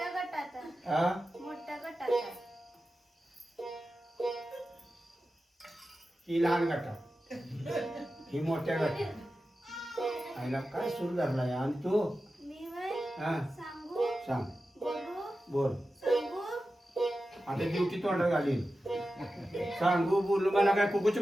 गटात आहे. हा मोठ्या गटात आहे. ही लहान गटात ही मोठ्या गटात आईला काय सुरू झालाय आणि तू मी वय हा सांगू सांग बोलू बोल सांगू आता ड्युटी तोंडात घालीन सांगू बोलू मला काय कुकूची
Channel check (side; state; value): both; normal; correlation 0.93